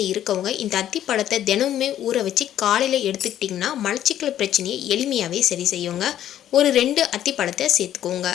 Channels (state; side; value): quieter; right; 11.5 dB